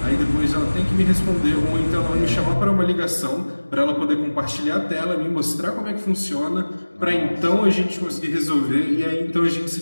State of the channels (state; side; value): inverted; both; correlation -1.00